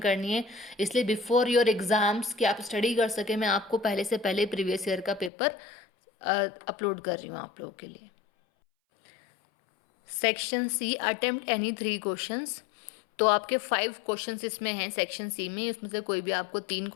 है। इसलिए बिफोर योर एग्ज़ाम्स कि आप स्टडी कर सकें, मैं आपको पहले से पहले प्रीवियस ईयर का पेपर अपलोड कर रही हूँ आप लोगों के लिए। Section C, attempt any 3 questions. तो आपके 5 क्वेश्चंस इसमें हैं सेक्शन सी में, इसमें से कोई भी आपको 3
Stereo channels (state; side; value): drops out; right; at 5.3 s